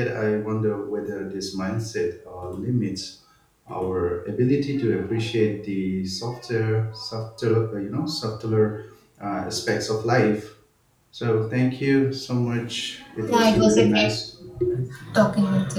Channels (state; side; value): identical; both; correlation 1.00